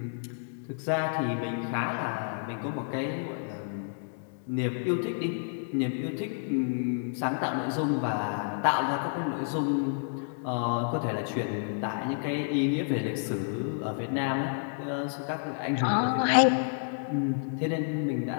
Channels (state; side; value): silent; right; digital silence